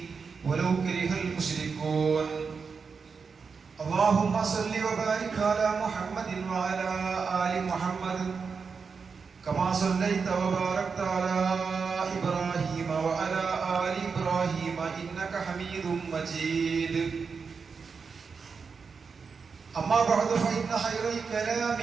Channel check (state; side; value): quieter; left; 5.3 dB